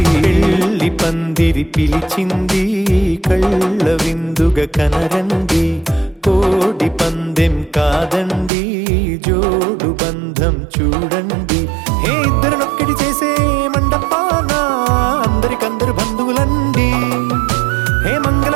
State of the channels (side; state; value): left; drops out; at 8.5 s